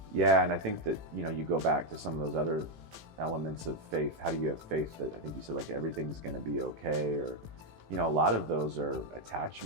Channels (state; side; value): late; left; 18 ms